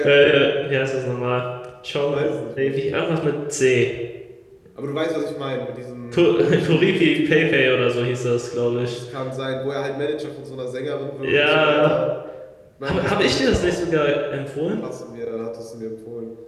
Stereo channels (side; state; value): both; identical; correlation 1.00